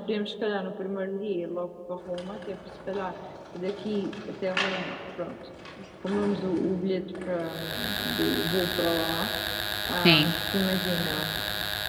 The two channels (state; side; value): identical; both; correlation 1.00